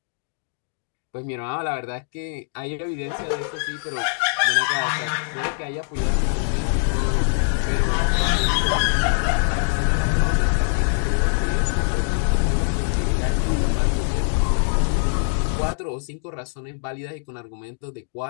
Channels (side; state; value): right; silent; digital silence